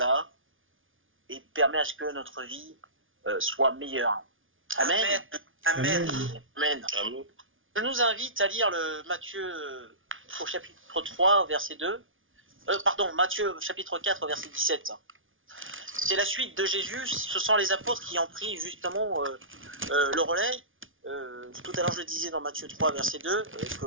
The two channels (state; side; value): late; left; 0.58 ms